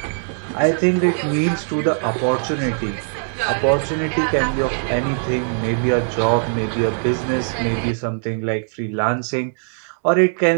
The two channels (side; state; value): left; silent; digital silence